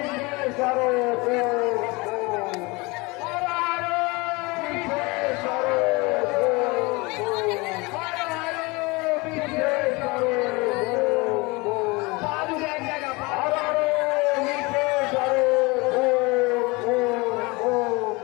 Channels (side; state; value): right; quieter; 25.3 dB